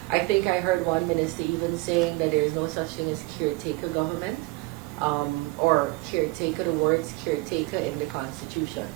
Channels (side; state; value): left; quieter; 21.7 dB